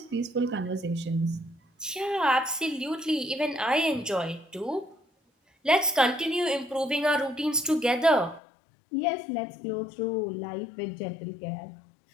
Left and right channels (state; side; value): drops out; right; at 8.4 s